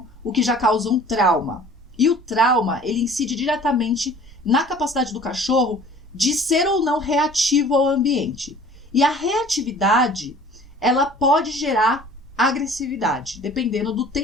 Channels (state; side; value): normal; both; correlation 0.48